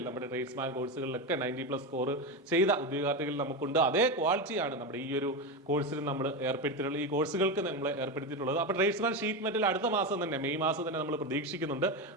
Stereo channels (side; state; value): both; normal; correlation 0.16